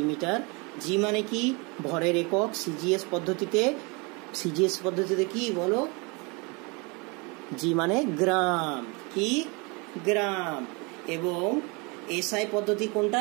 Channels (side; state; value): left; quieter; 29.3 dB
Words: জি মানে কি? ভরের একক। সিজিএস পদ্ধতিতে, সিজিএস পদ্ধতিতে কি বলো? জি মানে গ্রাম, কি? গ্রাম। এবং এসআই পদ্ধতি কোনটা?